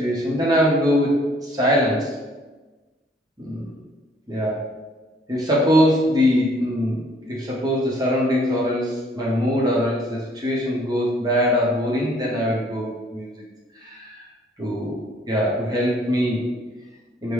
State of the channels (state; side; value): normal; both; correlation 0.61